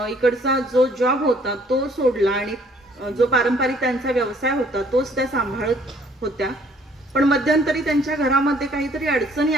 इकडचा जो जॉब होता तो सोडला आणि जो पारंपरिक त्यांचा व्यवसाय होता तोच त्या सांभाळत होत्या. पण मध्यंतरी त्यांच्या घरामध्ये काहीतरी अडचणी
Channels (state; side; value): normal; both; correlation 0.60